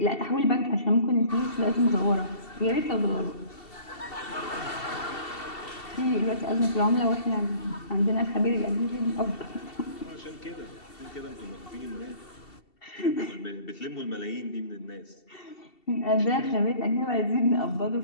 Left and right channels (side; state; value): right; late; 2.7 ms